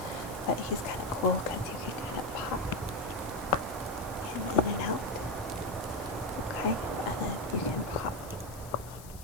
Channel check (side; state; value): left; noise; hiss, 17 dB below the sound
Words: but he's kind of cool because you can kind of pop him in and out. Okay, and then you can pop